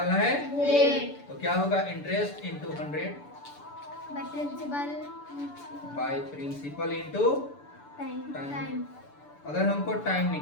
है? रेट। तो क्या होगा? Interest into 100 by principal into time. अगर हमको टाइम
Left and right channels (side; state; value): right; late; 6.9 ms